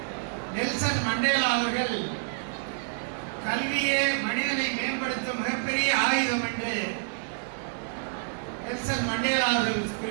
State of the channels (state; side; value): silent; left; 59 dB below the other